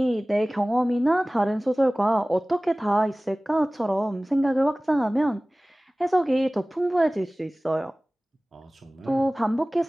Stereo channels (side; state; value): both; normal; correlation 0.98